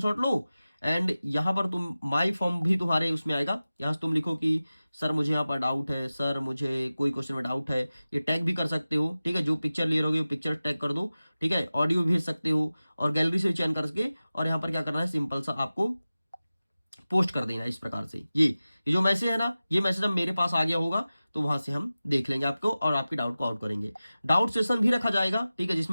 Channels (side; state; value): both; inverted; correlation -0.96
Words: लो, एंड यहाँ पर तुम माई फॉर्म भी तुम्हारे उसमें आएगा। यहाँ से तुम लिखो कि सर मुझे यहाँ पर डाउट है, सर मुझे कोई क्वेश्चन में डाउट है, ये टैग भी कर सकते हो। ठीक है, जो पिक्चर ले रहोगे वो पिक्चर टैग कर दो। ठीक है, ऑडियो भेज सकते हो और गैलरी से चयन करके, और यहाँ पर क्या करना है, सिंपल सा आपको पोस्ट कर देना इस प्रकार से। ये जो मैसेज है ना, ये मैसेज अब मेरे पास आ गया होगा, तो वहां से हम देख लेंगे आपको और आपके डाउट को आउट करेंगे। डाउट सेशन भी रखा जाएगा। ठीक है,